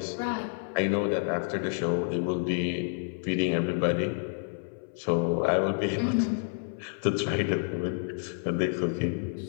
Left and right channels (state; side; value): silent; right; 58 dB below the other